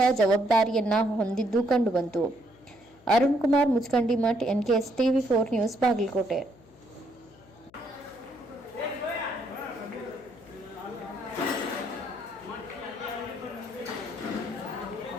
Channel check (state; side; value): noise; left; hum, 27 dB below the sound